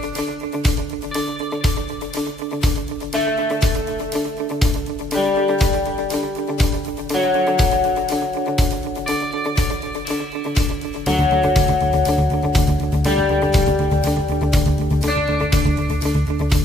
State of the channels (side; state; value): both; normal; correlation 0.70